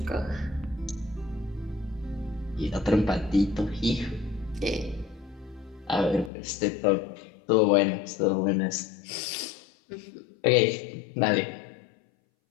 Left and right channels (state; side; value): drops out; right; at 6.3 s